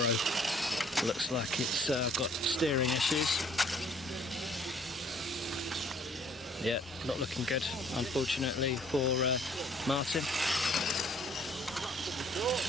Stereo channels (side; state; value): both; normal; correlation 0.59